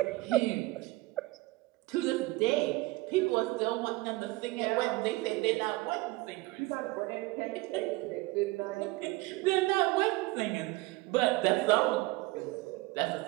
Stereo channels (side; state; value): left; quieter; 20.9 dB